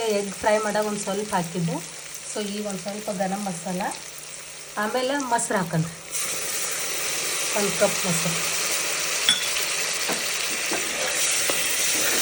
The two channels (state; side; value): identical; both; correlation 1.00